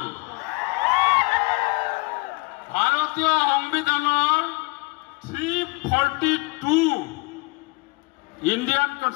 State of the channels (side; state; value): right; quieter; 26.6 dB